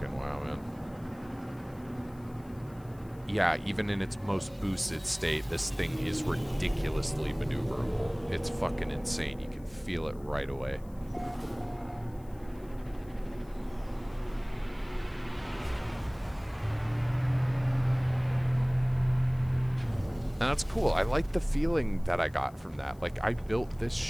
wow, man. Yeah, even in its most boosted state, this thing is ridiculously maneuverable. It's fucking insane. You can feel it right away. And that's cool. I like the feeling that I got from that. Like, I built this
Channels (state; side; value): noise; left; hiss, 28 dB below the sound